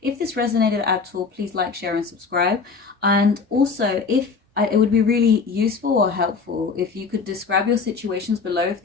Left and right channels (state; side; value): quieter; right; 4.9 dB